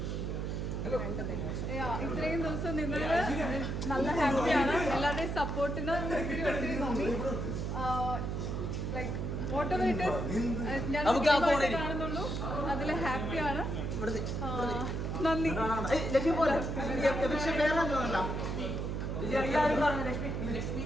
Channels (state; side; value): noise; right; hum, 2 dB below the sound